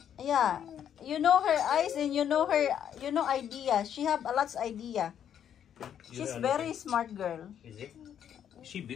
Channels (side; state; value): right; quieter; 9.3 dB